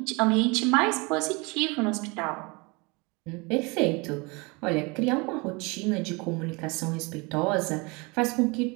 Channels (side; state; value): left; quieter; 27.6 dB